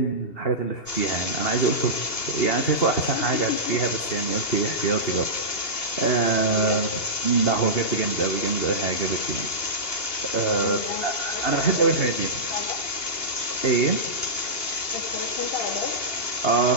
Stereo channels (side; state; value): right; late; 2.8 ms